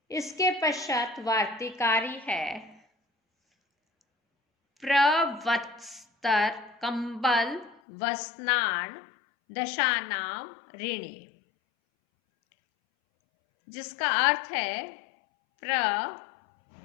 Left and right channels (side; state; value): right; drops out; at 7.8 s